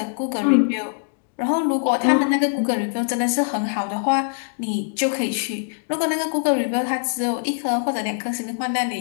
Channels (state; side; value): silent; right; digital silence